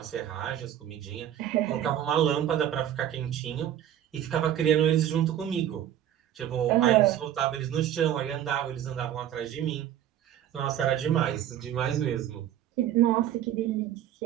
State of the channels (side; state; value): left; quieter; 11.0 dB